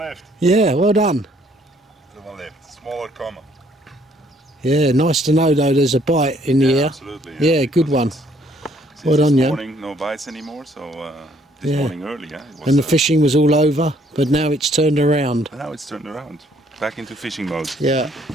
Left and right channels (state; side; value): normal; both; correlation 0.65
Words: Yeah, well done. Still one left. Smaller common. Yeah, nice to know though there's a bite in the air. Absolutely. Yeah, good one. Since Well done, this Jan. morning, no bites anymore, so this Yeah. morning early, yeah. It was, And the fishing was all over, but now it's turned around. Now it's turned around. Back into fishing mode. Yeah.